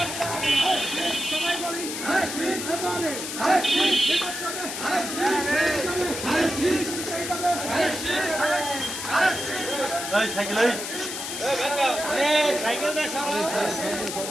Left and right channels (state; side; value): noise; left; hiss, 6 dB below the sound